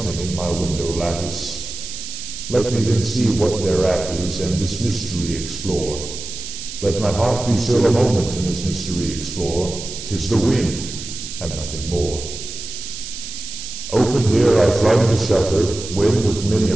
in my window lattice. Let me then see what thereat is, and this mystery explore. Let my heart be still a moment, and this mystery explore. 'Tis the wind, and nothing more." Open here I flung the shutter, when with many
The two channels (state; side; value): noise; right; hiss, 9 dB below the sound